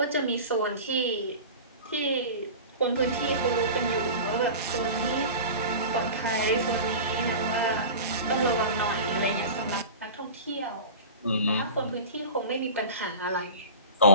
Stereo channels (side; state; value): both; inverted; correlation -0.34